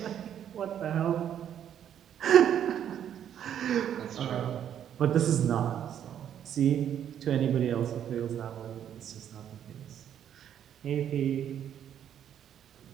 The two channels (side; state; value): left; quieter; 9.7 dB